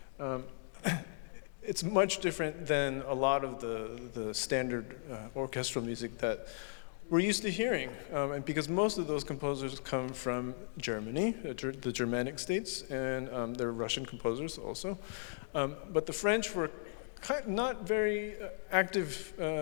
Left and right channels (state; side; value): silent; right; digital silence